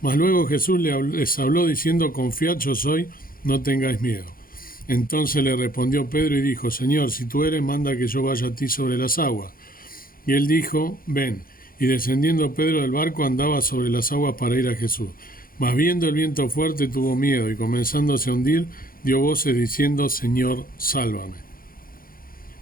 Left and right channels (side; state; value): right; late; 0.42 ms